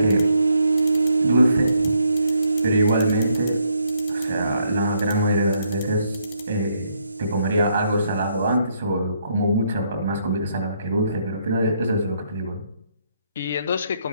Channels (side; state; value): both; inverted; correlation -0.74